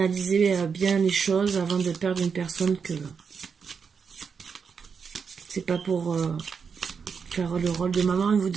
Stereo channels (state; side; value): quieter; left; 6.0 dB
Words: bien les choses avant de perdre une personne que c'est pas pour faire le rôle de maman et vous